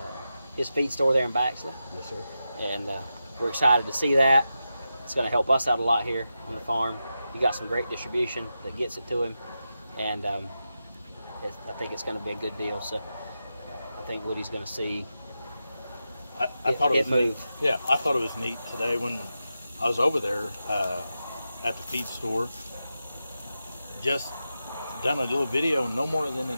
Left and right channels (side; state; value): both; inverted; correlation -0.90